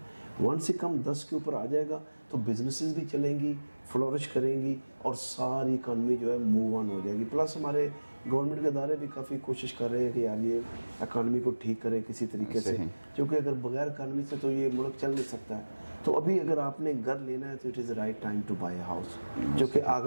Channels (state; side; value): inverted; both; correlation -1.00